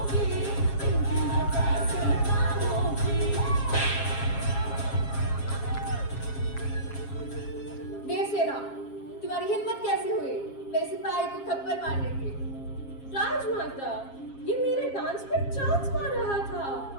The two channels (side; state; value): right; late; 7.4 ms